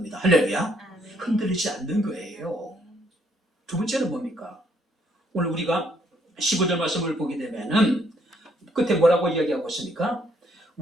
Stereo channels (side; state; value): both; normal; correlation 0.69